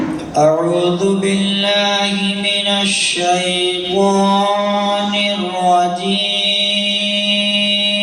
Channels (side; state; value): both; identical; correlation 1.00